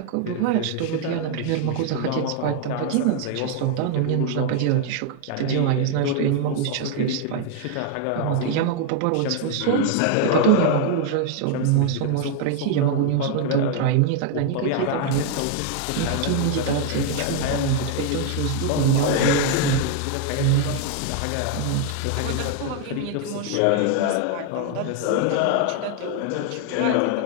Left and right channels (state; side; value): different; both; correlation 0.00